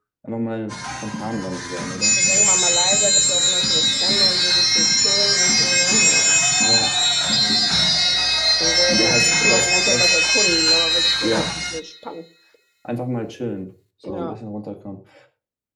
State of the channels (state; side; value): identical; both; correlation 1.00